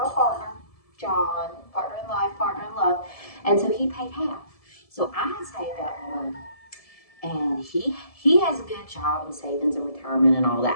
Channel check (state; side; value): late; right; 1.7 ms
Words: partner, John, partner in life, partner in love, and so he paid half. So I had saved up money, and he has a good job in savings and retirement and all